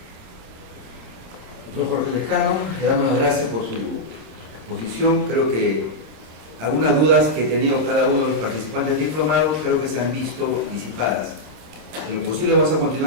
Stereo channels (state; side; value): late; left; 27 ms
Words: Doctor Jorge Lescano, le damos las gracias por su exposición. Creo que algunas dudas que ha tenido cada uno de los participantes del diplomado creo que se han visto disipadas. En lo posible vamos a